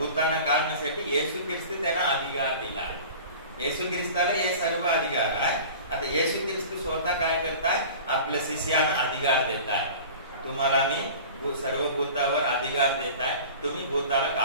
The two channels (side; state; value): both; inverted; correlation -0.39